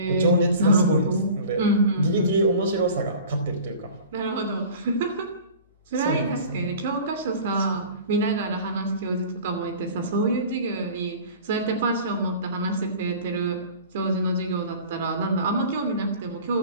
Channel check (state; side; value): inverted; both; correlation -0.42